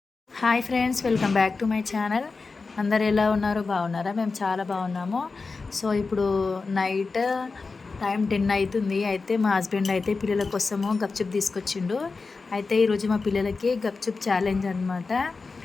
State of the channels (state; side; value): quieter; right; 4.2 dB